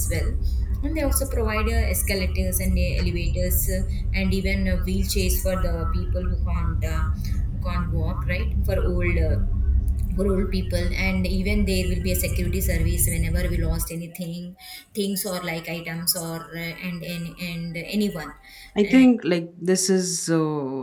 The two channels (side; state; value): both; identical; correlation 1.00